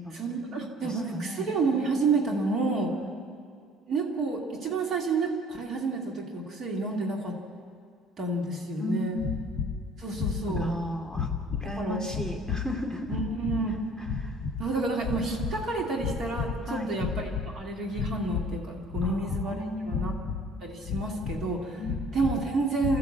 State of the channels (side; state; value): both; normal; correlation 0.52